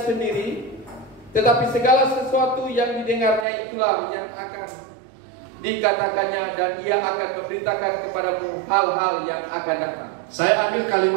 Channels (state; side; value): drops out; left; at 3.5 s